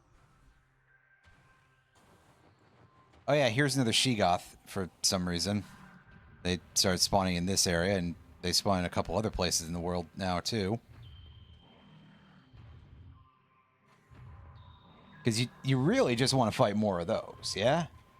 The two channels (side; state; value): both; identical; correlation 1.00